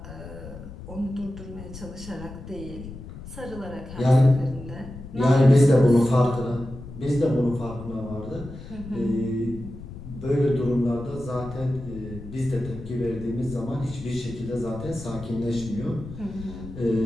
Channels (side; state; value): left; noise; rumble, 13 dB below the sound